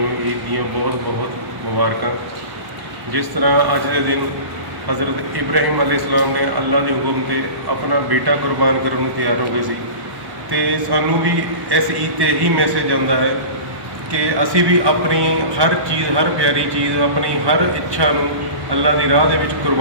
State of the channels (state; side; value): late; left; 1.1 ms